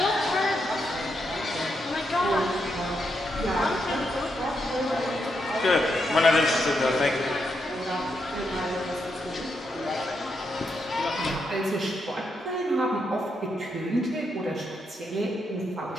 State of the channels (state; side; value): normal; both; correlation 0.81